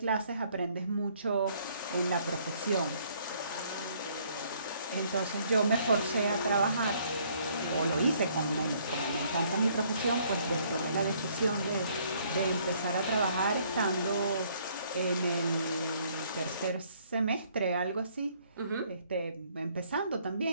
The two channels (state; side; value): inverted; both; correlation -0.64